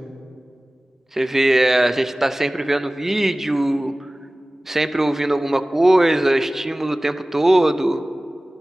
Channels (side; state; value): both; normal; correlation 0.98